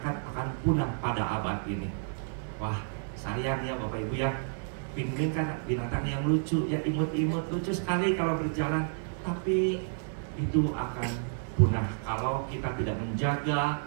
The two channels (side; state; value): left; silent; digital silence